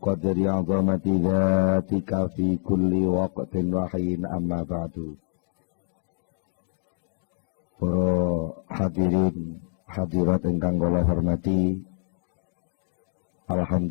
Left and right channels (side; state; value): right; silent; digital silence